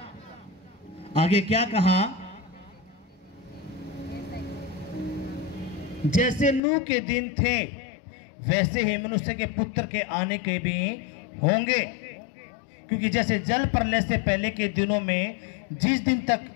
आगे क्या कहा? जैसे नूह के दिन थे वैसे ही मनुष्य के पुत्र के आने के भी होंगे। क्योंकि जैसे जल प्रलय से पहले के दिनों में जिस दिन तक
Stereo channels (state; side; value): drops out; right; at 6.6 s